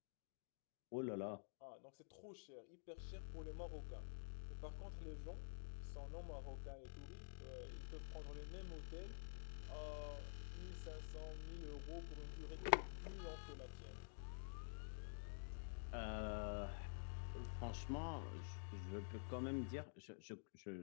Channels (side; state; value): right; silent; digital silence